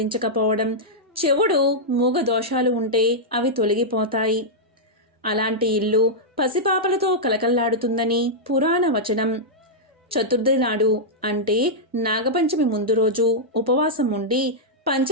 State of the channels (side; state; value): both; normal; correlation -0.08